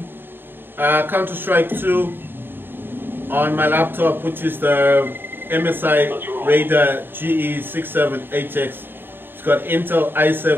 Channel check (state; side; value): late; left; 0.098 ms